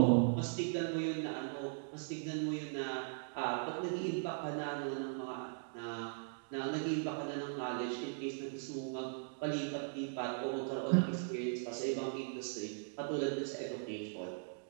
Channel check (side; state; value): left; silent; digital silence